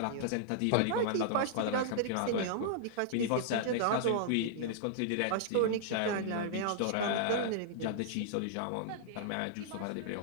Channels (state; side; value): different; both; correlation -0.01